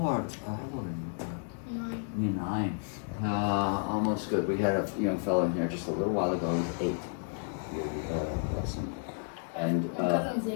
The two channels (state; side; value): silent; right; 57 dB below the other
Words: you? 9. Almost good. We had a young fellow in here just a little while ago. He was 8. Bless him. And Cousin's